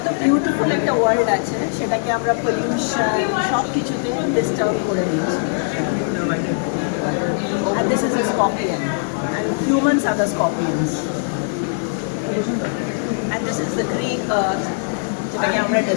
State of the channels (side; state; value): right; silent; 64 dB below the other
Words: বিউটিফুল একটা ওয়ার্ল্ড আছে, সেটাকে আমরা পলিউশন সব কিছুতে ডিস্টার্ব করে দিচ্ছি। And this is a scorpion. And humans are the scorpions. And this is the green earth, যেটাকে আমরা